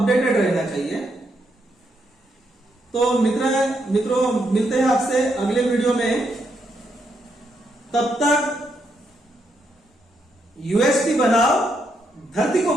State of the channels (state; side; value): normal; both; correlation 0.78